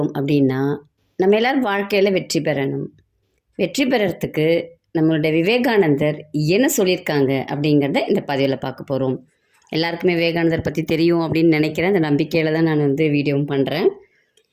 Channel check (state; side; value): identical; both; correlation 1.00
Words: அப்படின்னா, நம்ம எல்லோரும் வாழ்க்கையில் வெற்றி பெறணும். வெற்றி பெறறதுக்கு நம்மளுடைய விவேகானந்தர் என்ன சொல்லியிருக்காங்க அப்படிங்கிறத இந்த பதிவில் பார்க்க போகிறோம். எல்லாருக்குமே விவேகானந்தர் பற்றி தெரியும் அப்படின்னு நினைக்கிறேன். அந்த நம்பிக்கையில் தான் நான் வீடியோவும் பண்ணுறேன்.